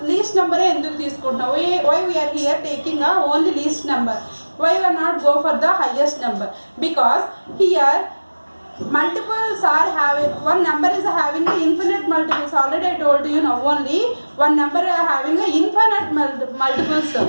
లీస్ట్ నెంబరే ఎందుకు తీసుకుంటున్నావు? Why we are here taking only least number, why we are not go for the highest number? Because here multiples are having, one number is having infinite multiples. Already I told you now, only one number having infinite multiples.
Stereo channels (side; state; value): both; inverted; correlation -1.00